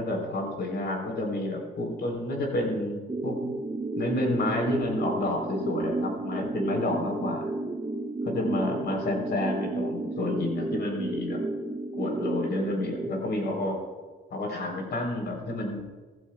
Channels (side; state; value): both; normal; correlation 0.57